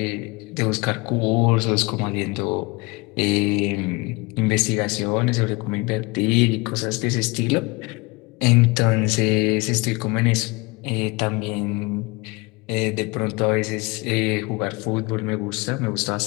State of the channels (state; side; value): quieter; right; 25.3 dB